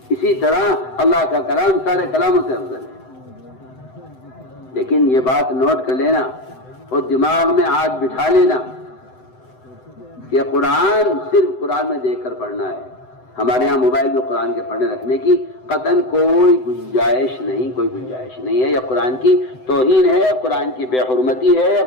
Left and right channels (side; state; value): right; late; 7.9 ms